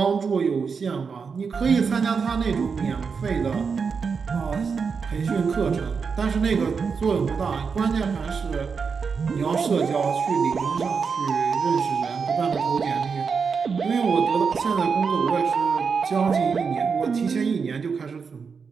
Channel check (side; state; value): left; quieter; 5.6 dB